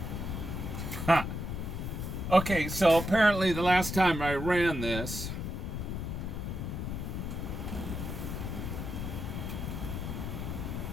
Okay, so apparently the last time I ran this,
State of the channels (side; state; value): left; noise; rumble, 4 dB below the sound